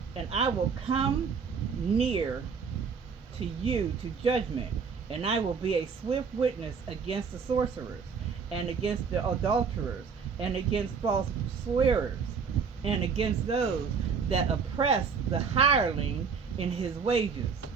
And I will come near to you to judgment, and I will be a swift witness against the sorcerers, and against the adulterers, and against false swearers, and against those that oppress the hireling in his wages,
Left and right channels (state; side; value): quieter; left; 5.9 dB